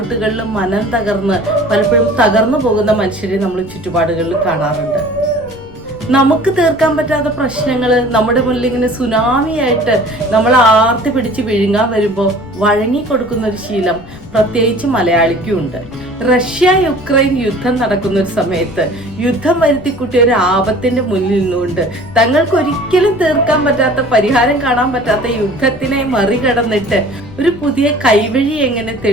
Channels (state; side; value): noise; left; rumble, 20 dB below the sound